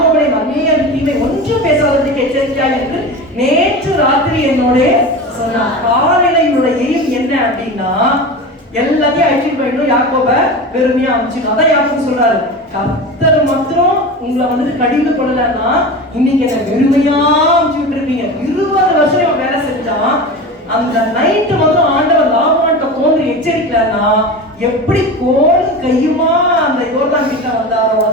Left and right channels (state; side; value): normal; both; correlation 0.29